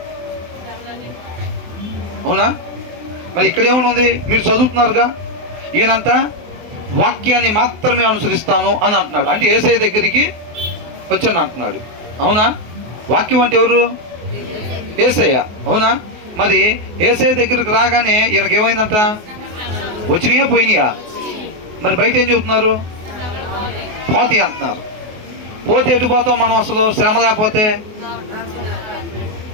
అవునా? మరి ఇక్కడ ఏమనుంది? మీరు చదువుతున్నారుగా, ఈయనంట వాక్యాన్ని మాత్రమే అనుసరిస్తాను అని అంటున్నాడు. అంటే యేసయ్య దగ్గరికి వచ్చాను అంటున్నాడు. అవునా? వాక్యం అంటే ఎవరు? యేసయ్య. అవునా? మరి యేసయ్య దగ్గరికి రాగానే ఈయనకి ఏమైందంట? వచ్చినాయా పోయినాయా? మరి బయట ఏం చెబుతున్నారు? పోతాయి అంటున్నారు. పోతే ఎటు పోతాం మనం అసలు? శ్రమ లేకపోతే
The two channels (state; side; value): late; left; 24 ms